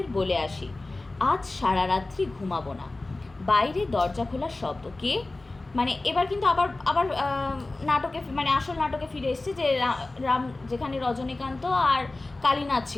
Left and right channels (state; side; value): quieter; right; 3.0 dB